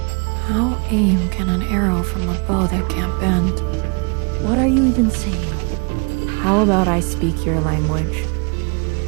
How aim can an arrow from a bow that can't bend? What are you even saying? How about I speak your language?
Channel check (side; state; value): left; quieter; 34.2 dB